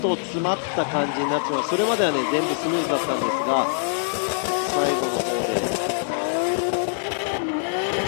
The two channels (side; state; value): right; silent; digital silence